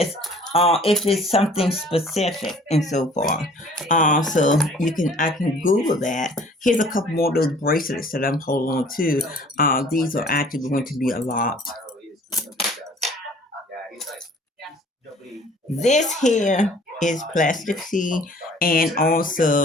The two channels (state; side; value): normal; both; correlation 0.52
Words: if it's something specific and so forth. So I can Google that. Here's a couple more of those bracelets that I'm holding on to. These are actually going to be a lot. This here is plastic C, and